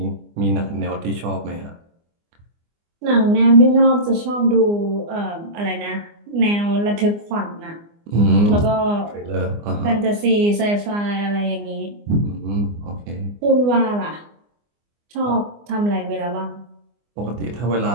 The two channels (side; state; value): left; late; 24 ms